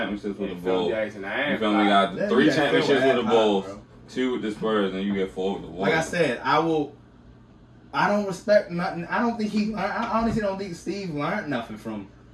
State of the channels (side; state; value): both; identical; correlation 1.00